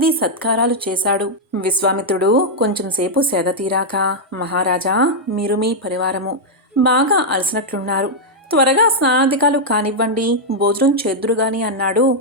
సత్కారాలు చేశాడు. విశ్వామిత్రుడు కొంచెంసేపు సేద తీరాక, మహారాజా, మీరు మీ పరివారము బాగా అలసినట్లున్నారు, త్వరగా స్నానాధికాలు కానివ్వండి, భోజనం చేద్దురుగాని అన్నాడు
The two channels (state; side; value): normal; both; correlation -0.03